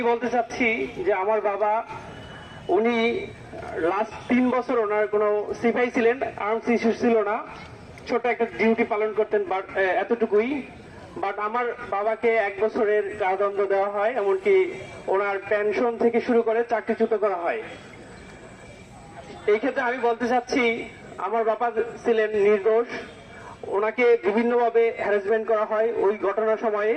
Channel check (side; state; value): both; identical; correlation 1.00